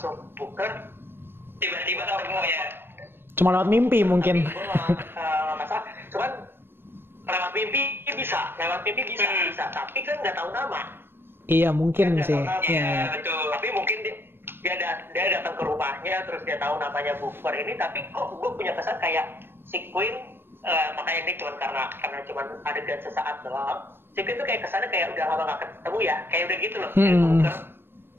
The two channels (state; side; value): late; left; 0.11 ms